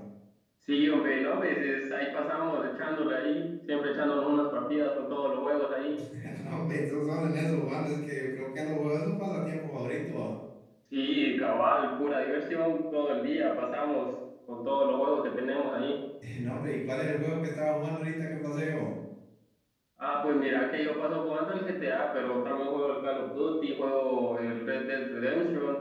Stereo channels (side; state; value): both; identical; correlation 1.00